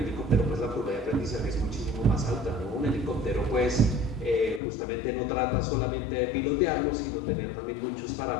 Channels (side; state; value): right; drops out; at 4.6 s